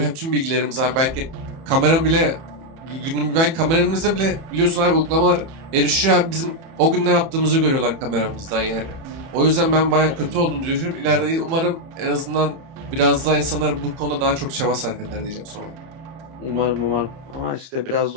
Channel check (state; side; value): late; left; 30 ms